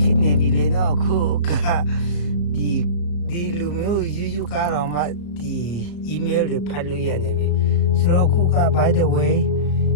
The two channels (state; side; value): late; right; 34 ms